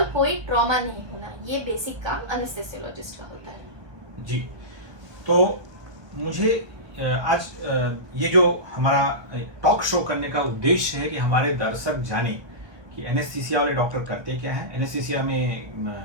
कोई ट्रॉमा नहीं होना, ये बेसिक काम एनेस्थेसियोलॉजिस्ट का होता है। जी, तो मुझे आज ये जो हमारा टॉक शो करने का उद्देश्य है कि हमारे दर्शक जाने कि एनेस्थीसिया वाले डॉक्टर करते क्या है, एनेस्थीसिया में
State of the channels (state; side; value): late; left; 1.2 ms